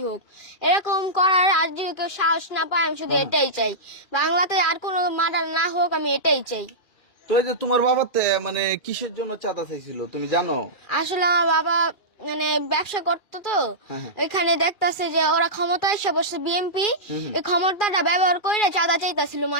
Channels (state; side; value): late; right; 2.4 ms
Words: হোক। এরকম করার আর যদি কেউ সাহস না পায়, আমি শুধু এটাই চাই। বাংলাতে আর কোনো মার্ডার না হোক, আমি এটাই চাই। তো এই যে তোমার বাবাতে মানে কিসের জন্য চাঁদা চাইছিল তুমি জানো? আসলে আমার বাবা মানে ব্যবসা করতো, তো এখানে দেখতাছে যে ওরা ক্ষমতায় এসে বসে বিএনপি, এই ক্ষমতাটা ব্যবহার করে চাঁদা চাইতাছিল